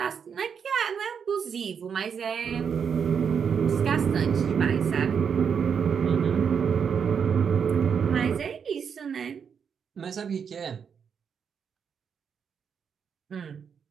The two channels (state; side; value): quieter; left; 6.9 dB